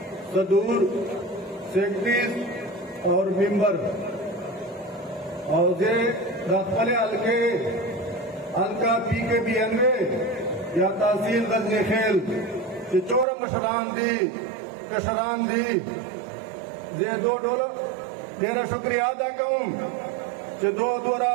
सदूर सेक्रेटरी और मेंबर और जे रखले अलके अलका पी के बियानवे या तहसील गजनी खेल कि चोर मशरान दी कशरान दी जे दो डोर तेरा शुक्रिया अदा करूं कि दो दोरा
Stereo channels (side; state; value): left; drops out; at 13.2 s